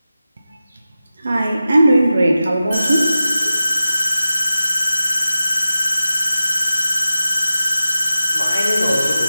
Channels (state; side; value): inverted; both; correlation -0.92